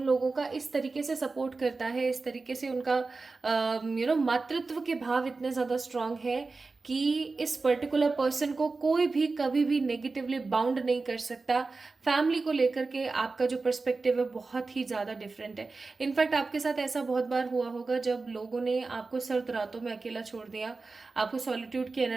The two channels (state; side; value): quieter; left; 3.9 dB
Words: लोगों का इस तरीके से सपोर्ट करता है, इस तरीके से उनका मातृत्व के भाव इतने ज़्यादा स्ट्रांग है कि इस पर्टिकुलर पर्सन को कोई भी कभी भी नेगेटिवली बाउंड नहीं कर सकता। फैमिली को लेकर के आपका जो पर्सपेक्टिव है बहुत ही ज़्यादा डिफरेंट है। इनफैक्ट आपके साथ ऐसा बहुत बार हुआ होगा जब लोगों ने आपको सर्द रातों में अकेला छोड़ दिया, आपको सॉलिट्यूड की